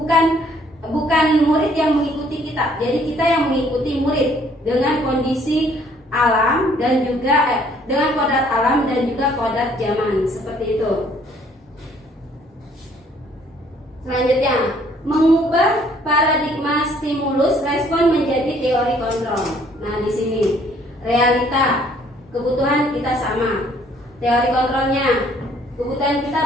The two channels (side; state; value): both; normal; correlation 0.62